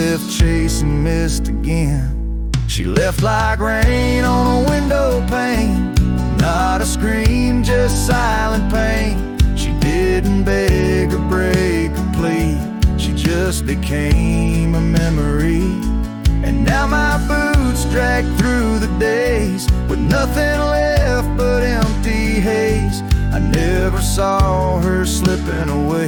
chasing mist again. She left like rain on a window pane, not a scream, just silent pain. She didn't beg or break or plead, she just became a memory. And now my boots drag through the days, with nothing left but empty haze. I never saw her slipping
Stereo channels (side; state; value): both; identical; correlation 1.00